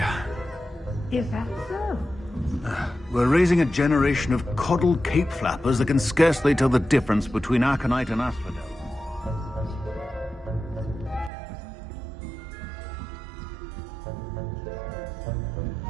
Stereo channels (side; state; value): left; drops out; at 11.3 s